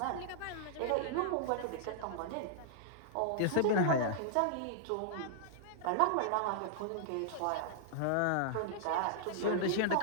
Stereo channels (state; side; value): different; both; correlation -0.01